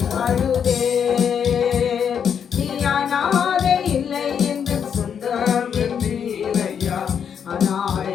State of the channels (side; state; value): right; quieter; 7.7 dB